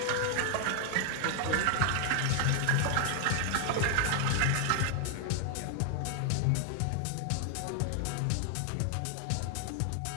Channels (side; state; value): both; different; correlation 0.00